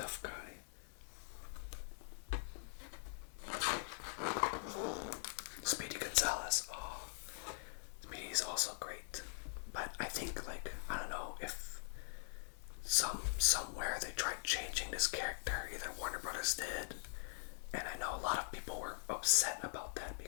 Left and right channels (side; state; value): right; silent; digital silence